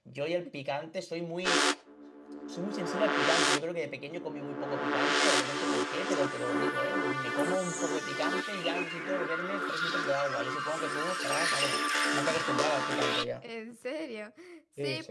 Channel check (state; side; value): identical; both; correlation 1.00